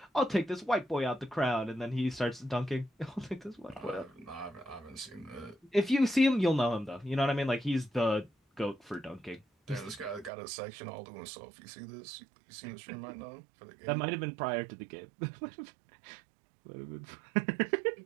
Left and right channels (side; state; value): left; drops out; at 10.3 s